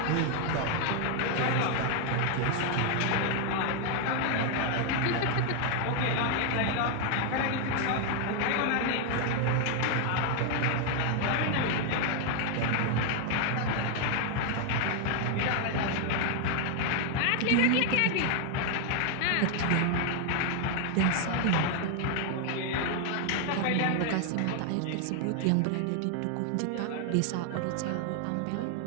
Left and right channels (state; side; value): different; both; correlation 0.00